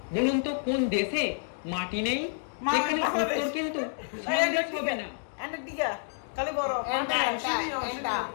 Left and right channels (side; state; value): right; silent; digital silence